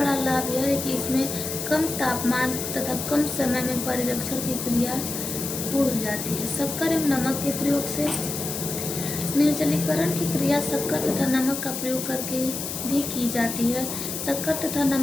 लाभ यह है कि इसमें कम तापमान तथा कम समय में परिरक्षण की क्रिया पूर्ण हो जाती है। शक्कर एवं नमक के प्रयोग से निर्जलीकरण की क्रिया शक्कर तथा नमक का प्रयोग करके भी की जाती है। शक्कर तथा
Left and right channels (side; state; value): left; noise; hiss, 5 dB below the sound